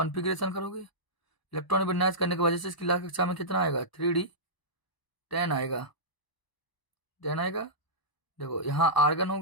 करोगे, इलेक्ट्रॉनिक विन्यास करने की वजह से इसकी लास्ट कक्षा में कितना आएगा, 3D 10 आएगा, 10 आएगा। देखो यहाँ आर्गन हो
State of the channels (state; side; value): late; right; 1.0 ms